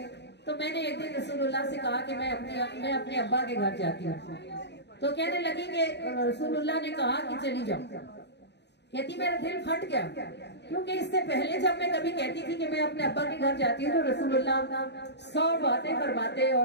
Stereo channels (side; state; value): right; late; 0.50 ms